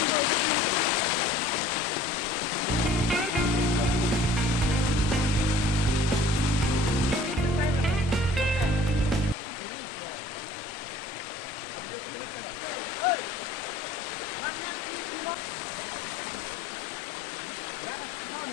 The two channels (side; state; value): both; normal; correlation 0.51